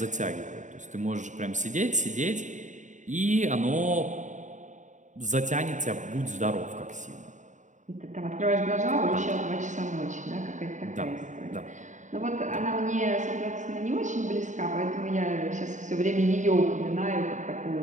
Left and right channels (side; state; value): left; late; 0.36 ms